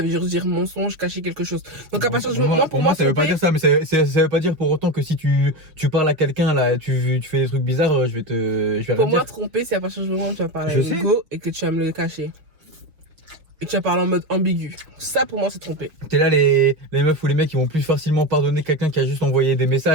veut juste dire mensonge, cacher quelque chose. Donc à partir du Pour moment, moi, pour moi, ça veut pas tromper- dire ça, mais ça veut pas dire pour autant que si tu parles à quelqu'un là, tu fais des trucs bizarres, je vais Pour rien moi, dire. tromper, c'est à partir du moment où tu vas parler Je à sais. une go et que tu vas me le cacher. Et que tu vas parler en mode ambigu. Ça, pour moi, c'est tromper. T'es là, les meufs ou les mecs, ils vont plus facilement pardonner quelqu'un qui a juste envoyé des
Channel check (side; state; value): left; late; 6.2 ms